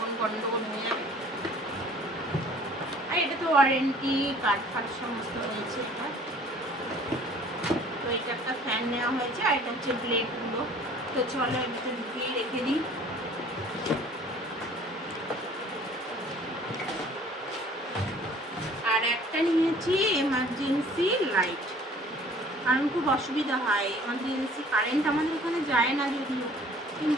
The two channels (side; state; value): both; normal; correlation 0.52